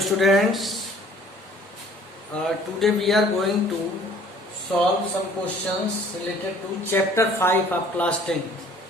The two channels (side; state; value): both; normal; correlation 0.54